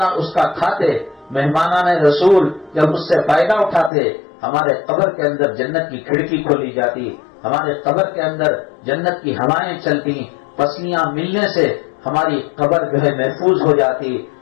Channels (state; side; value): drops out; right; at 3.9 s